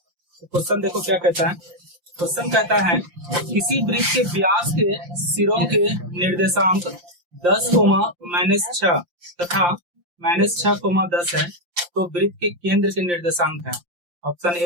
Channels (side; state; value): left; late; 5.7 ms